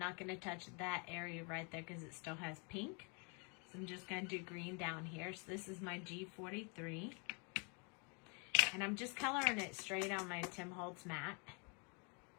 gonna touch that area right there because it still has pink. So I'm just gonna do green down here. So this is my G43. And I'm just coloring it straight on my Tim Holtz mat.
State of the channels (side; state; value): right; quieter; 35.6 dB